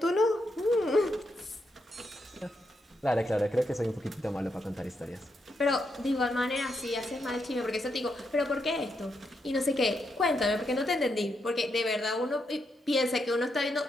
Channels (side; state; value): both; normal; correlation 0.81